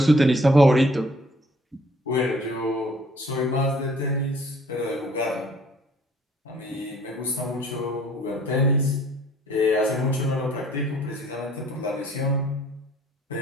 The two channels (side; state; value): both; normal; correlation 0.57